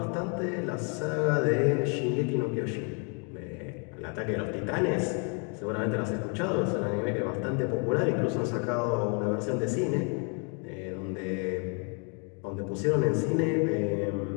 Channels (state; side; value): quieter; right; 37.5 dB